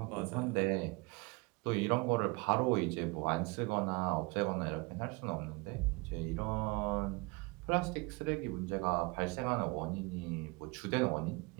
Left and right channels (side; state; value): left; quieter; 27.1 dB